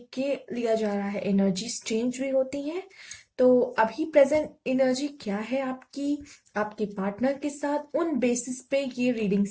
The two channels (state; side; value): identical; both; correlation 1.00